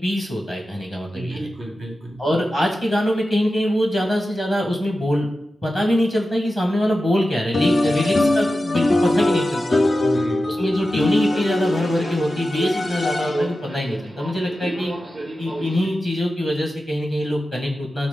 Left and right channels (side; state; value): both; normal; correlation 0.93